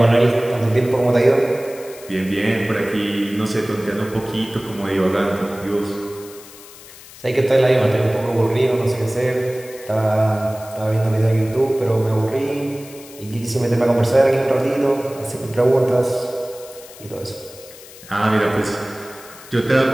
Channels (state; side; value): noise; left; hiss, 19 dB below the sound